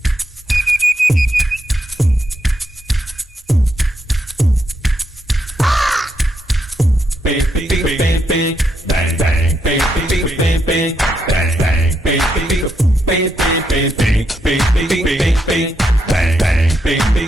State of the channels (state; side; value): normal; both; correlation 0.80